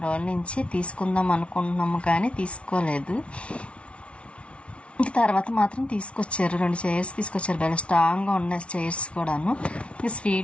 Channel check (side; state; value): right; late; 0.061 ms